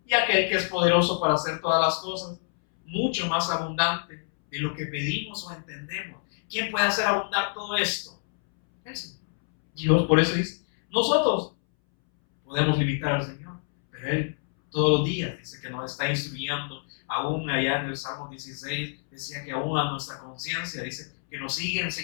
Y aquel que es poderoso para hacer todas las cosas, mucho más abundante de lo que pedimos o entendemos. ¿Quién puede hacer abundar todo esto? El Señor. Dios, por eso dice, nosotros podemos limitar al Señor, pero Él todos los días dice que nos está instruyendo. Aún allá en el Salmo 16 decía que aún a nuestra conciencia dice que nos sigue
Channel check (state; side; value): silent; right; 60 dB below the other